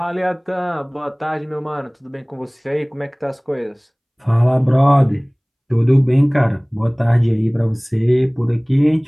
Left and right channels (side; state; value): both; identical; correlation 1.00